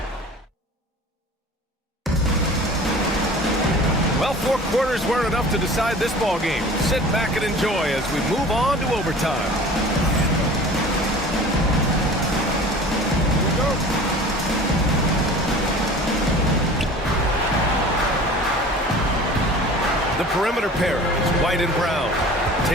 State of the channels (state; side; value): normal; both; correlation 0.42